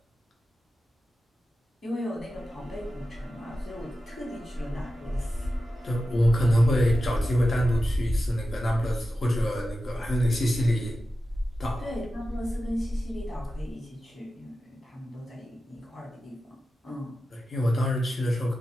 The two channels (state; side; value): normal; both; correlation 0.92